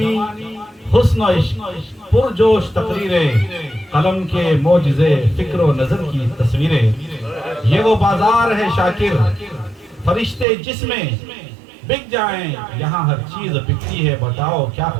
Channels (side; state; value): left; drops out; at 10.5 s